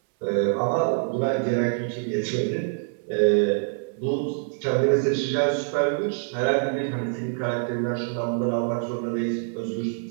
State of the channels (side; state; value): left; silent; 62 dB below the other